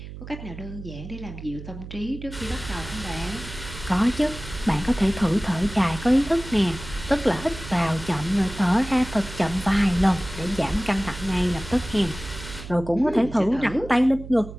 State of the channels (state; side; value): noise; right; hum, 12 dB below the sound